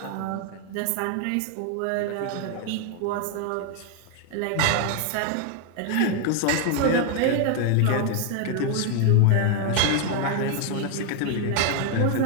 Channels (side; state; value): both; different; correlation 0.00